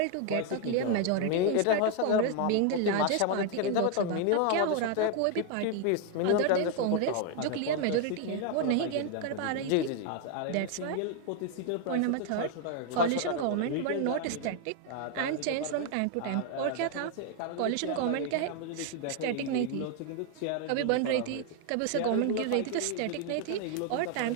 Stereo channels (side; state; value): both; different; correlation 0.00